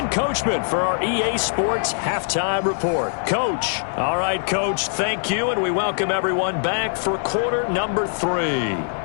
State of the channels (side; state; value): right; silent; digital silence